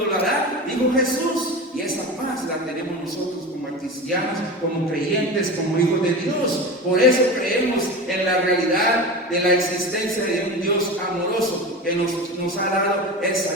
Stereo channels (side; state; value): both; normal; correlation 0.28